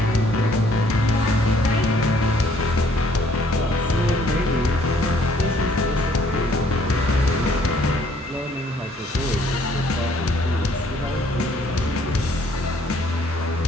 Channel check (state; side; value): normal; both; correlation 0.63